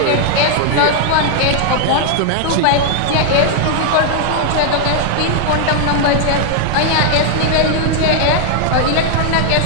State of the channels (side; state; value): both; different; correlation 0.00